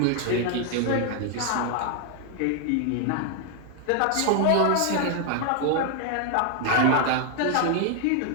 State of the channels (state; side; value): different; both; correlation 0.00